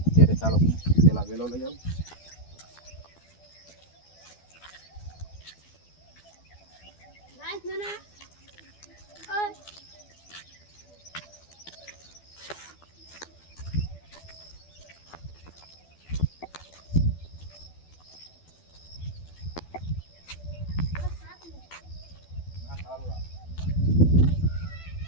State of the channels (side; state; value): right; late; 12 ms